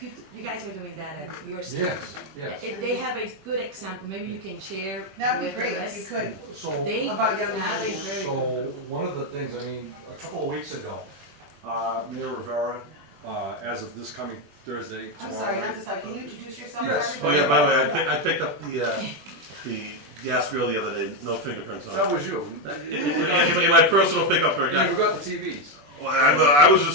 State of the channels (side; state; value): left; late; 21 ms